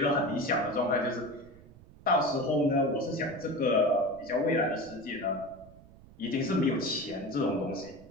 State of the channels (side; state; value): right; noise; rumble, 22 dB below the sound